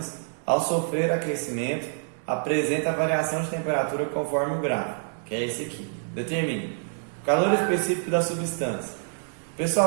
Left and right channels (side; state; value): left; silent; digital silence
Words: ao sofrer aquecimento, apresenta a variação de temperatura conforme o gráfico, que é esse aqui. Determine o calor específico da substância.